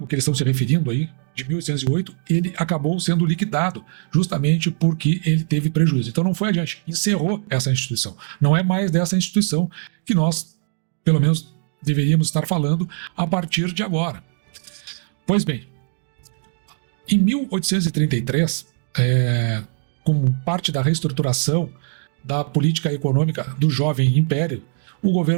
que eles estão se referindo aí, de 1808, ele acabou sendo liquidado justamente porque ele teve prejuízo. Então não foi adiante, encerrou essa instituição. Não é mais dessa instituição que nós, pelo menos, deveríamos estar falando a partir de agora. Pois bem, em 1833, como parte da reestruturação da política econômica do jovem império, o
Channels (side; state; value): left; silent; digital silence